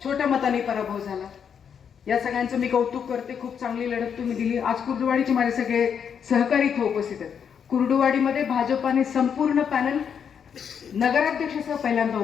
छोट्या मतांनी पराभव झाला. या सगळ्यांचं मी कौतुक करते. खूप चांगली लढत तुम्ही दिली. आज कुर्डुवाडीचे माझे सगळे सहकारी इथे उपस्थित आहेत. कुर्डुवाडीमध्ये भाजपाने संपूर्ण पॅनल नगराध्यक्षासह पहिल्यांदा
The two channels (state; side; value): quieter; right; 7.5 dB